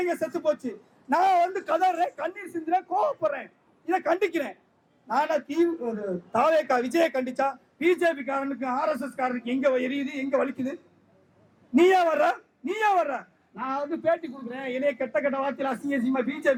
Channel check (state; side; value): identical; both; correlation 1.00